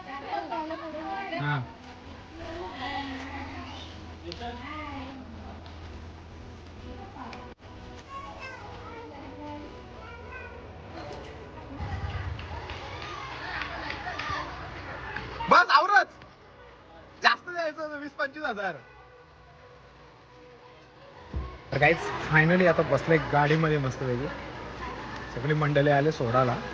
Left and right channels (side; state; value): both; identical; correlation 1.00